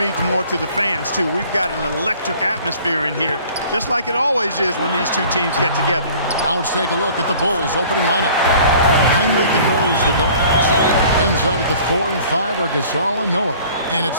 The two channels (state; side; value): inverted; both; correlation -0.50